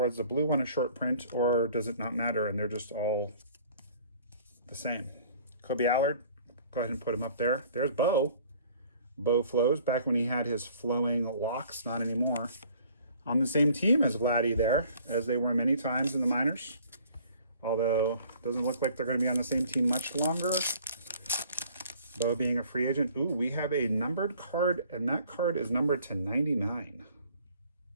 is the blue one a short print, or does it not matter and they're just all the same? Kobe Allard, go ahead and put him up there. There's Bo. Bo Flows, back when he had his flowing locks, not anymore. On the same team as Vladdy there, as they were many times in the minors. Although, it doesn't look like they're going to be on the same team much longer. Bo being a free agent. Ooh, we have a numbered card, and that card is numbered to 99.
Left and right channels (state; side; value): inverted; both; correlation -0.54